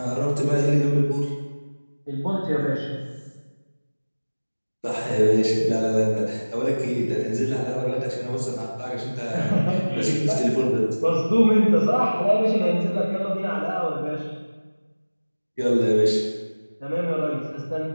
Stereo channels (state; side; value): inverted; both; correlation -1.00